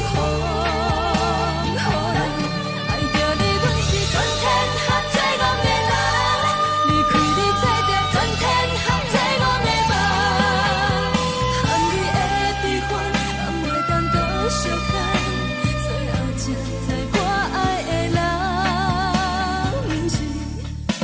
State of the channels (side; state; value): both; identical; correlation 1.00